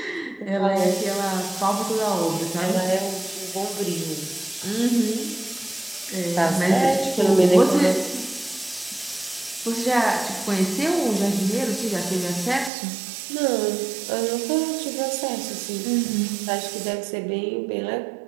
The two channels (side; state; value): left; drops out; at 12.7 s